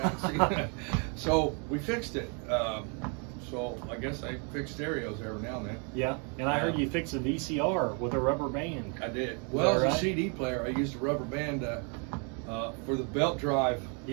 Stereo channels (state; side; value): quieter; left; 37.3 dB